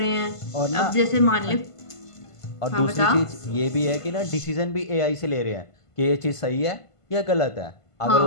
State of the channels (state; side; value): late; right; 1.5 ms